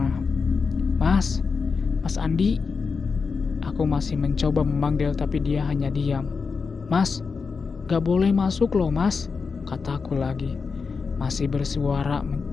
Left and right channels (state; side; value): quieter; right; 5.0 dB